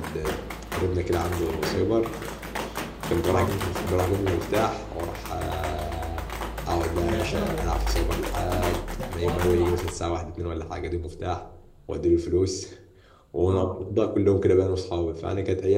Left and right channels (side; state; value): both; identical; correlation 1.00